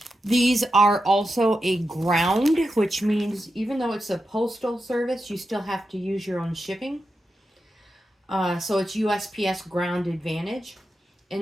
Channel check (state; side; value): normal; both; correlation 0.88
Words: These are also a ground, which means even though it's a postal service, you still have to use your own shipping. So it's USPS Ground Advantage. And